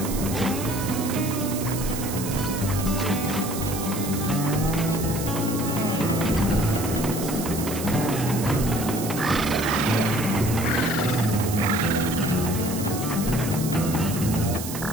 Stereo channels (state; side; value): noise; right; hiss, 8 dB below the sound